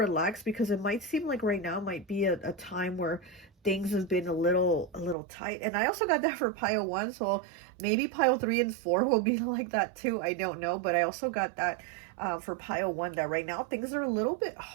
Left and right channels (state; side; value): drops out; left; at 5.2 s